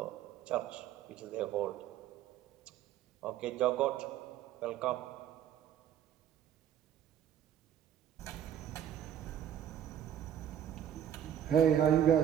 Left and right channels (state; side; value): quieter; left; 10.0 dB